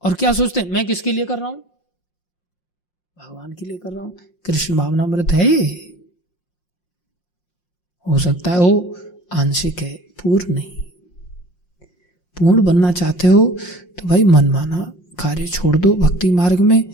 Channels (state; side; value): late; right; 5.6 ms